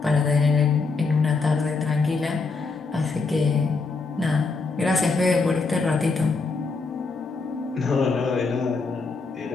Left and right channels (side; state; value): right; quieter; 4.1 dB